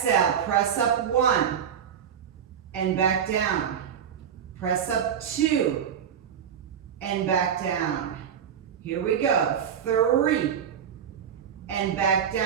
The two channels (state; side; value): quieter; left; 8.2 dB